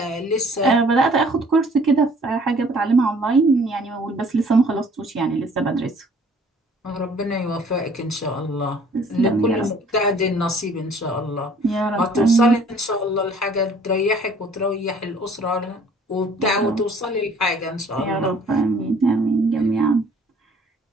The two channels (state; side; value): normal; both; correlation 0.56